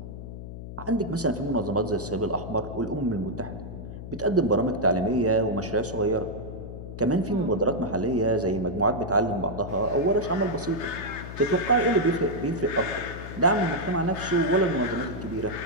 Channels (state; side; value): noise; left; hum, 10 dB below the sound